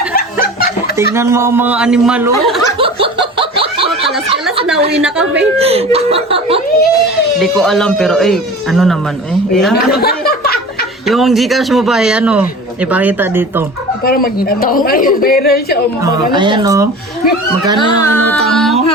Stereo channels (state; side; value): normal; both; correlation 0.38